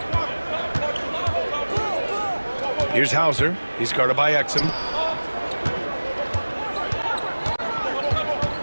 Here's Hauser. He's guarded by Exum.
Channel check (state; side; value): inverted; both; correlation -1.00